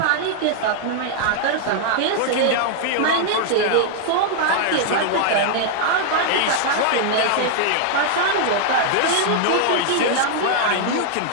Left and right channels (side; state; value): both; different; correlation 0.00